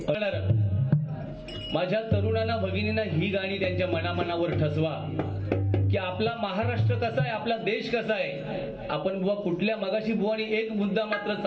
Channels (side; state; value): both; identical; correlation 1.00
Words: माझ्या तरुणांना भगिनींना ही गाणी त्यांच्या मनामनावर ठसवा की आपला महाराष्ट्र कसा आहे, आपला देश कसा आहे. आपण बुवा कुठल्या मगाशी बुवानी एक मुद्दा मात्र